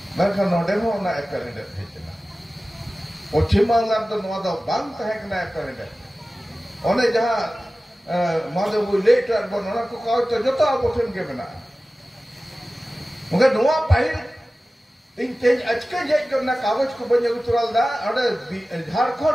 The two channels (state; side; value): normal; both; correlation 0.96